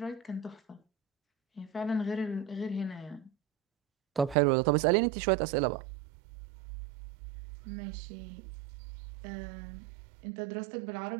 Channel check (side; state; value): left; drops out; at 4.4 s